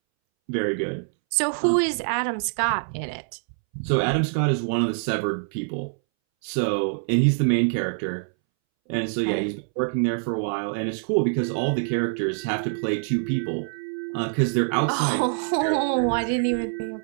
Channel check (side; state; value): left; silent; 62 dB below the other